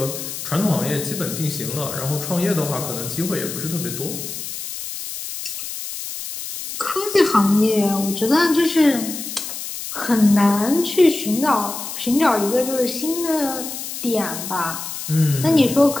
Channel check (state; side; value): noise; left; hiss, 8 dB below the sound